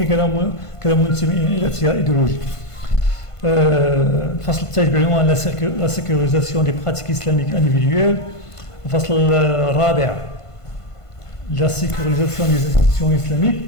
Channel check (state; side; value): late; right; 1.5 ms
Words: كان منتمي إلى تيار إيديولوجي. الفصل الثالث بعنوان لا سيكوريزاسيون دي براتيك إسلاميك انديفيدويل. الفصل الرابع لا سيكوريزاسيون دي انستيتيسيون إسلاميك.